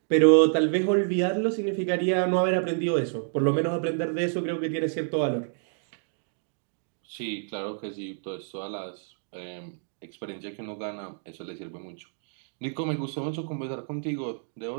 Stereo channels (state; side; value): silent; left; digital silence